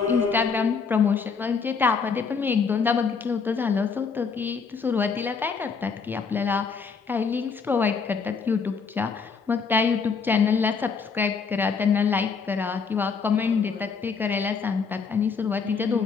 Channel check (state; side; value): quieter; right; 5.4 dB